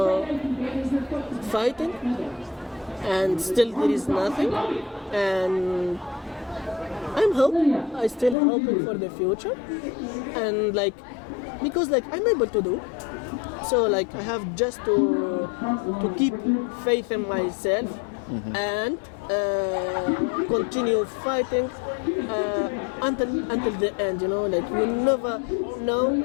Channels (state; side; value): drops out; right; at 8.3 s